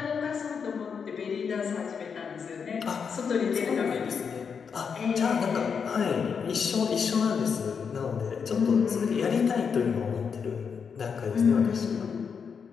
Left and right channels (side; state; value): right; quieter; 6.3 dB